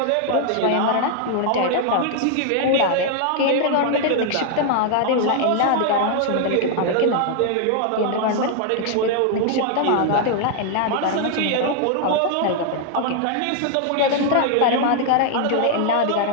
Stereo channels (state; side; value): different; both; correlation 0.00